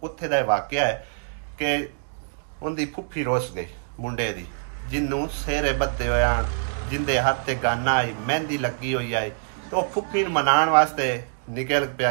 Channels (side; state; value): left; silent; digital silence